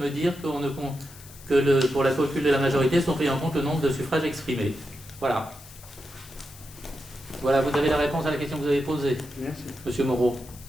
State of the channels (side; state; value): left; noise; hiss, 20 dB below the sound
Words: dire pour la calcul de la majorité sont pris en compte le nombre de suffrages exprimés. Voilà. Voilà, vous avez la réponse à la question que vous avez posée. Merci. Monsieur Moreau.